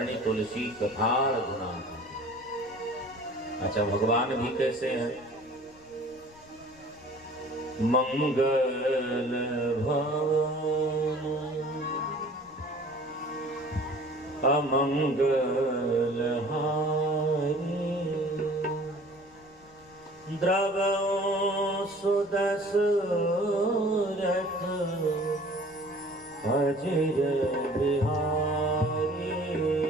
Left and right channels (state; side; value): noise; left; rumble, 27 dB below the sound